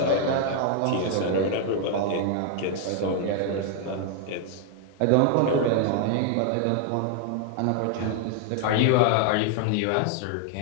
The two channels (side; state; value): both; different; correlation 0.00